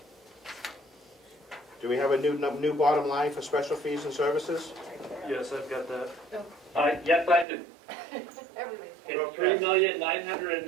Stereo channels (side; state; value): left; drops out; at 7.5 s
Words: Do we have a new bottom line for special fees and services? Yes, I've got that. Yes, I do. Everybody's It's